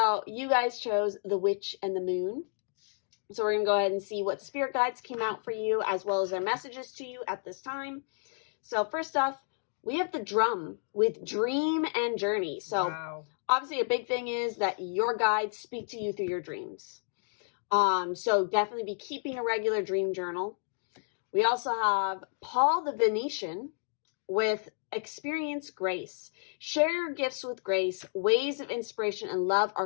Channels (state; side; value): silent; right; 56 dB below the other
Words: you guys chose the Witch and the Moon. So we're going to go ahead and see what spirit guides came out for you, as well as their messages to you at this time. So first off, we have the Drum with Dream and Journey. So wow. Obviously a big thing is that your guides speak to you through your dreams. So definitely be keeping a regular dream journal. We also have Paul the Venetian with Experience Grace. Share your gifts with grace. Waves of inspiration and love